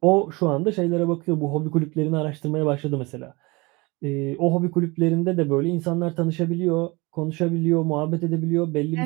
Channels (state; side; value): quieter; left; 25.0 dB